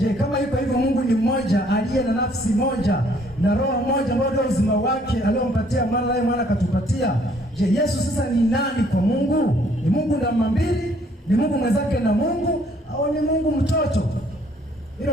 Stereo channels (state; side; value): normal; both; correlation 0.63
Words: kama yuko hivyo Mungu ni mmoja aliye na nafsi moja na roho moja ambayo ndio uzima wake aliompatia mwana, naye mwana akatupatia. Je, Yesu sasa ni nani kwa Mungu? Ni Mungu namba mbili? Ni Mungu mwenzake na Mungu, au ni Mungu mtoto?